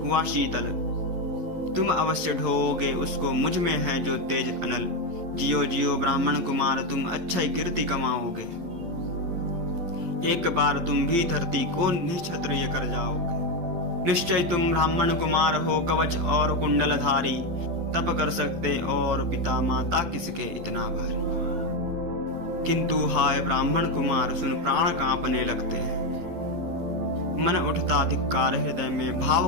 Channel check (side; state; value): left; late; 12 ms